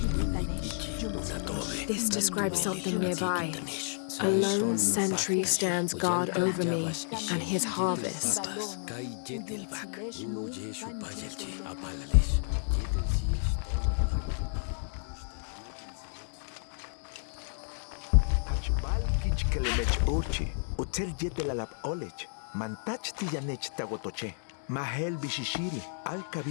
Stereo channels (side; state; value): right; silent; digital silence